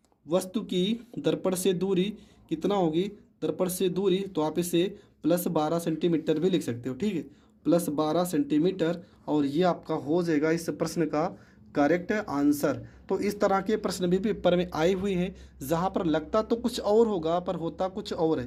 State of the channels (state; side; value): identical; both; correlation 1.00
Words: वस्तु की दर्पण से दूरी कितना होगी, दर्पण से दूरी, तो आप इसे प्लस 12 सेंटीमीटर भी लिख सकते हो। ठीक है, प्लस 12 सेंटीमीटर, और ये आपका हो जाएगा इस प्रश्न का करेक्ट आंसर। तो इस तरह के प्रश्न भी पेपर में आए हुए हैं, जहाँ पर लगता तो कुछ और होगा पर होता कुछ और